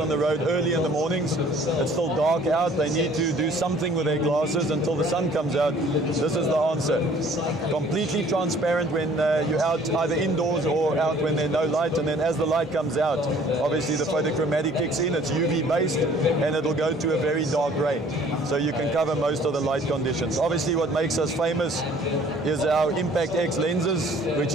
the road early in the mornings. It's still dark out. They need to do something with their glasses until the sun comes out. This is the answer. Completely transparent when you're out either indoors or out when there's no light, and then as the light comes out, obviously the photochromatic kicks in. It's UV based and it'll go to a very dark grey. So you can cover most of the light conditions. Obviously what makes us famous is our Impact X lenses, which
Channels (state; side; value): normal; both; correlation 0.54